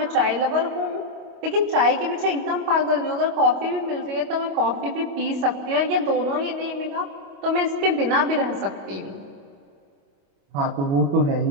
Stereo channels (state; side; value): late; left; 28 ms